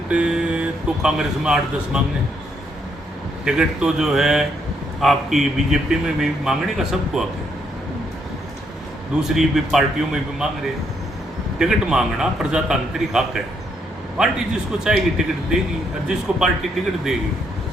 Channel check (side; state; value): both; normal; correlation 0.74